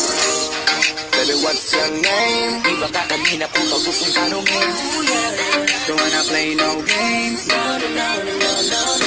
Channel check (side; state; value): both; identical; correlation 1.00